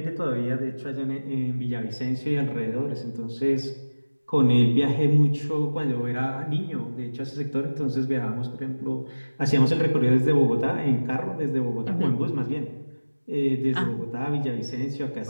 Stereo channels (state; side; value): inverted; both; correlation -1.00